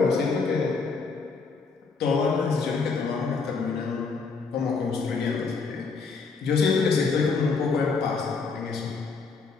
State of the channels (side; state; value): right; quieter; 4.6 dB